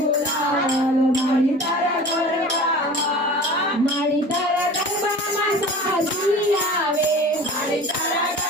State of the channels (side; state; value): both; normal; correlation 0.39